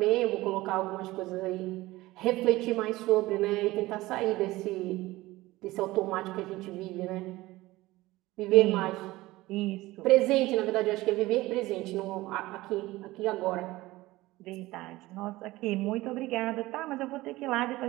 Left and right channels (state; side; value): quieter; left; 18.7 dB